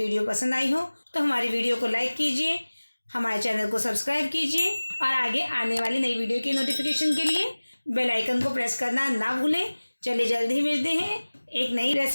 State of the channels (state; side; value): inverted; both; correlation -1.00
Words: पसंद आई हो तो हमारी वीडियो को लाइक कीजिए, हमारे चैनल को सब्सक्राइब कीजिए और आगे आने वाली नई वीडियो की नोटिफिकेशन के लिए बेल आइकन को प्रेस करना ना भूलें। चलिए, जल्द ही मिलते हैं एक नई